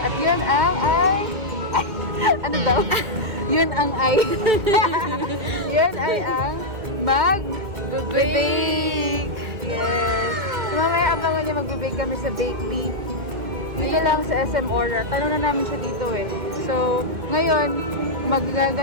yun ang ano daw? Yun ang yun ay ang mag-bake. Yes. So mamaya abangan niya mag-bake kami sa BakeBe. Dito lang sa SM Aura. Tanong na namin siya dito eh. So, ngayon,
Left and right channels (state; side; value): late; left; 2.2 ms